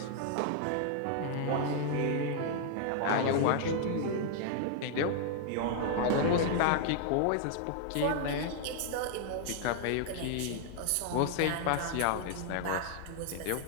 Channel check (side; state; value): both; different; correlation 0.00